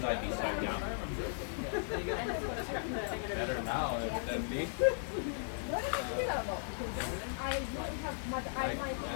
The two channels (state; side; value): silent; right; digital silence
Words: be so young. Better now than me.